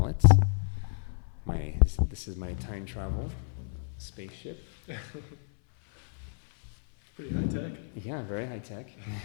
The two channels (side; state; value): right; silent; 58 dB below the other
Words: This is my time travel spaceship. It's pretty high tech. Yeah, very high tech.